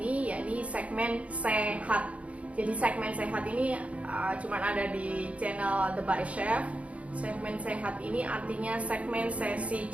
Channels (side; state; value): left; late; 0.065 ms